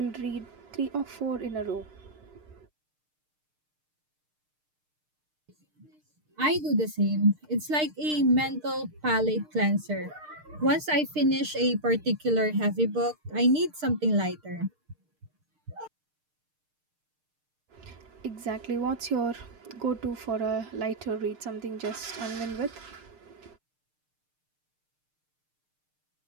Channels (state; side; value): late; left; 6.6 ms